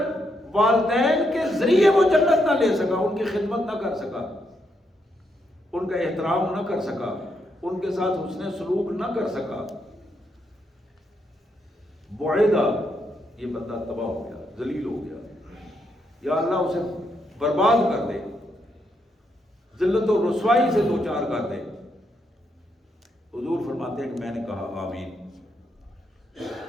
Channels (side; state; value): both; normal; correlation 0.79